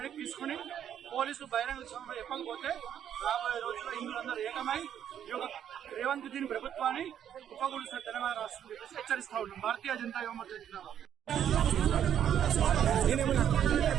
తీసుకుని పోలీసులు బహిరంగ సభలో చెప్పకపోతే రాబోయే రోజుల్లో హిందువులందరూ ఏకమై ఈ యొక్క రేవంత్ దీన్ ప్రభుత్వాన్ని ఉపకూలిసిన తెలంగాణ రాష్ట్రం చెప్పేసి హెచ్చరిస్తా ఉన్నాం. భారతీయ జనతా యువ మోర్చా జిందాబాద్.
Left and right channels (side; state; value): left; quieter; 9.7 dB